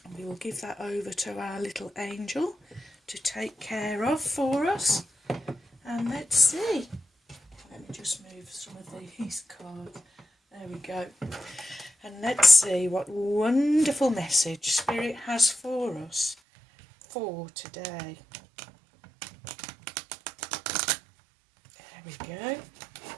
And we will give that over to our little angel to take care of for us. And let's see. Let me just move some of these cards. There we go. And let's see what wonderful message Spirit has for us for today. There we go.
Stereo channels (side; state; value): left; drops out; at 16.4 s